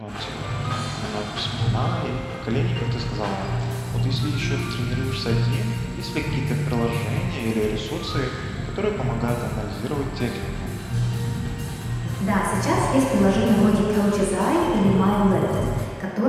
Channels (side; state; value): both; identical; correlation 1.00